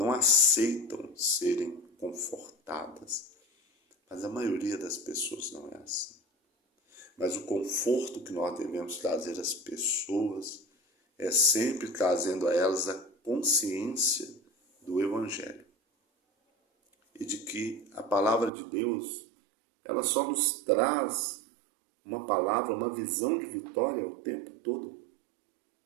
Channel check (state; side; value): drops out; left; at 18.5 s